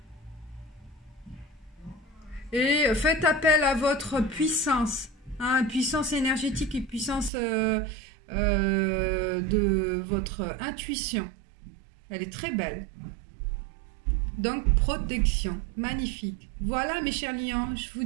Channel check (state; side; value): drops out; left; at 7.3 s